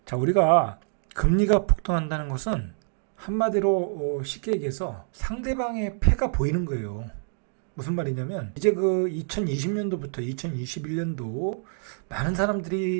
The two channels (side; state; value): left; silent; 61 dB below the other